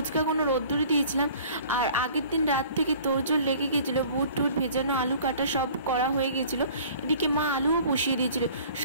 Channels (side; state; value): both; inverted; correlation -0.49